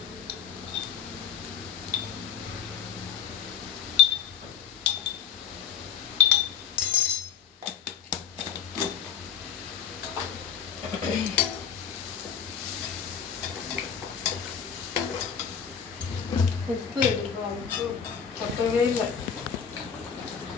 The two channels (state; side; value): quieter; right; 8.1 dB